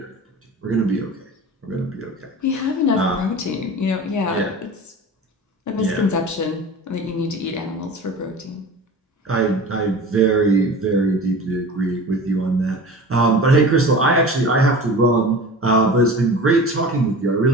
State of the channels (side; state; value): both; normal; correlation 0.36